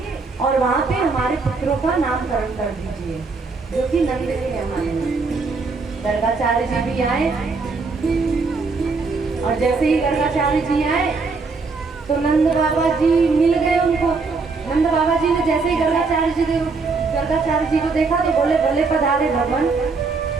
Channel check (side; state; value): left; quieter; 4.3 dB